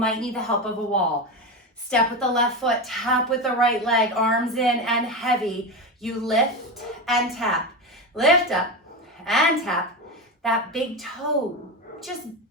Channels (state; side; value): normal; both; correlation 0.18